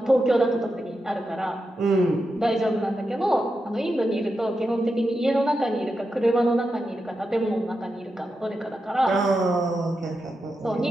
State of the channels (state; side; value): normal; both; correlation 0.88